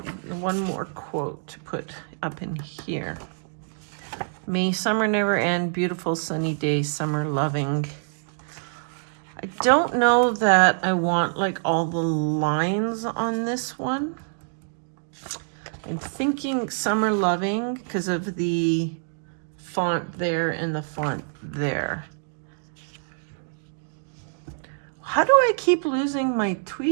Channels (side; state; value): left; silent; digital silence